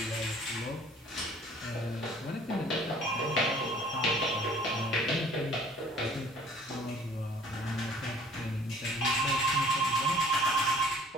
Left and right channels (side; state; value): both; normal; correlation 0.53